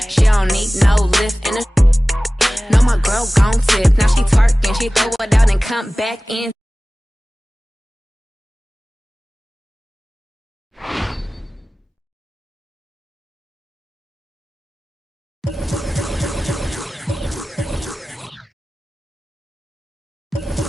she don't need no lift in a. No, my girl gon' tip, now she twerking, she throw it out and come back in.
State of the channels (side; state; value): both; normal; correlation 0.97